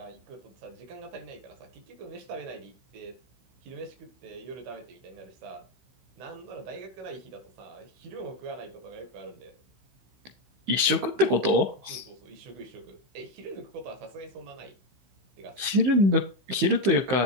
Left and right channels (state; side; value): late; left; 16 ms